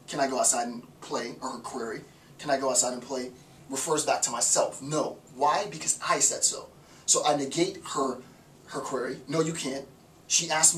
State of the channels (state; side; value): identical; both; correlation 1.00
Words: can I go outside and play, or her query, can I go outside and play, refers back to myself. No. Why? Because I said so. So I negate her query. No, you can't. She asked